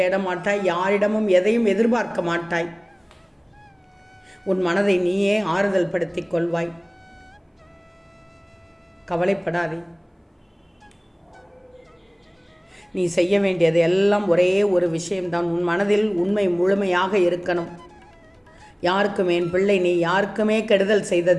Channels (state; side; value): identical; both; correlation 1.00